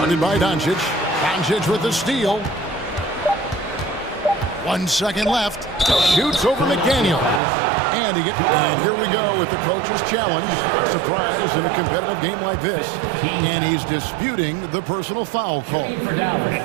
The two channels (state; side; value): drops out; left; at 7.4 s